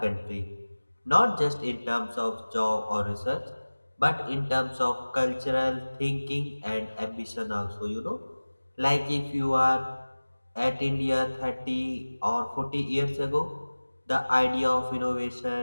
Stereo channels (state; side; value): inverted; both; correlation -1.00